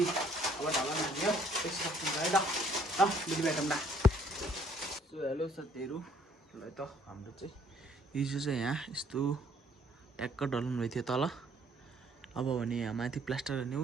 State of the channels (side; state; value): both; normal; correlation 0.62